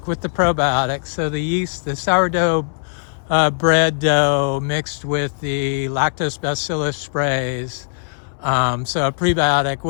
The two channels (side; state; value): right; silent; 66 dB below the other